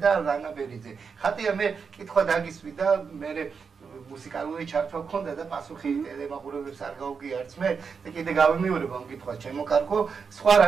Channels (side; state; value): left; quieter; 5.7 dB